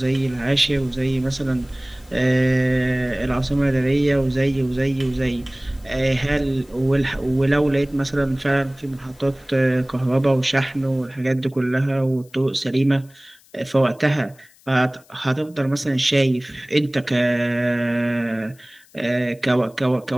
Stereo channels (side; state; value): left; noise; hiss, 29 dB below the sound